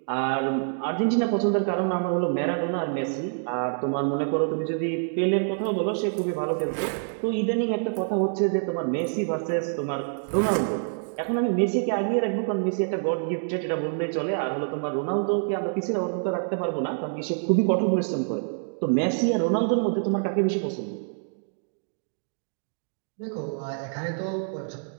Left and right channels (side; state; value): left; silent; digital silence